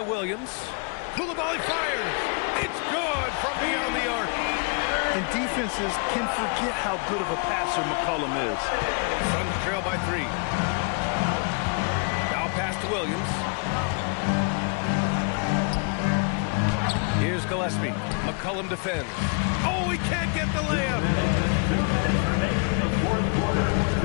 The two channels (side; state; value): right; quieter; 37.6 dB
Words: Williams. Koulibaly fires. It's good from beyond the arc. And defenses can forget how good of a passer McCollum is. Suns trail by 3. Now pass to Williams. Here's Gillespie. McCollum defends. Oh, he can't get the layup. 2 minutes remaining in the fourth quarter.